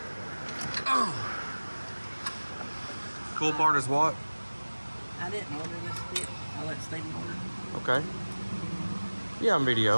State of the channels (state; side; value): inverted; both; correlation -1.00